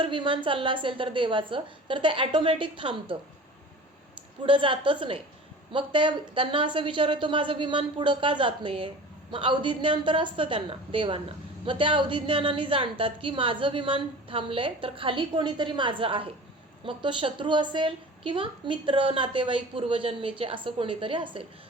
विमान चाललं असेल तर देवाचं, तर ते ॲटोमॅटिक थांबतं, पुढं जातच नाही. मग त्यांना असं विचार येतो माझं विमान पुढं का जात नाही आहे. मग अवधिज्ञान तर असतं त्यांना, देवांना. मग त्या अवधिज्ञानाने जाणतात की माझं विमान थांबलंय तर खाली कोणीतरी माझं आहे. मग तो शत्रू असेल किंवा मित्र, नातेवाईक, पूर्वजन्मीचे असं कोणीतरी असेल.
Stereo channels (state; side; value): normal; both; correlation 0.39